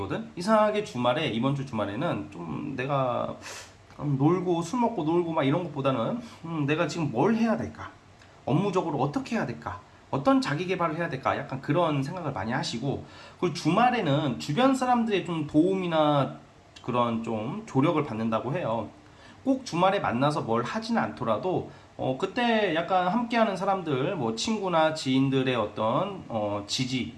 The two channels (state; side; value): identical; both; correlation 1.00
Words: 이상하게 주말에 이번 주 주말에는 좀 내가 놀고 술 먹고 놀고 막 이런 것보다는 내가 지금 뭘 해야 될까? 업무적으로 어떻게 해야 될까? 어떤 자기 개발을 해야 될까? 약간 그런 생각을 많이 하시고, 그리고 주말에는 주변 사람들의 좀 도움이나 그런 좀 조력을 받는다고 해요. 꼭 주말에 만나서 뭘 하지는 않더라도 그때 약간 함께하는 사람들, 뭐 친구나 지인들의 어떤 지지,